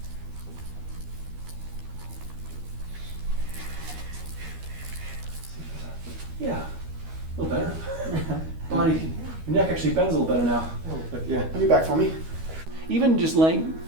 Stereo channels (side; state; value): left; late; 12 ms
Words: Yeah, a little better. Body, your neck actually bends a little better now. Yeah. Let me back for me. Even just laying